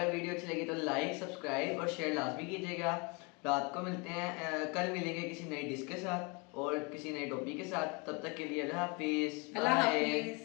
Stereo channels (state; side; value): quieter; right; 29.5 dB